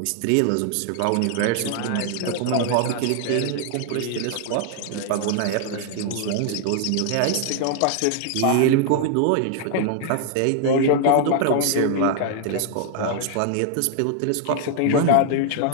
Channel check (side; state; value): both; different; correlation 0.00